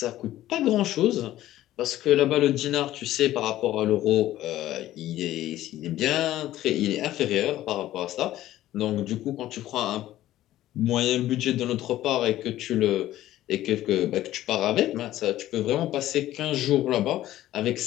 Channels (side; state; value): right; quieter; 14.1 dB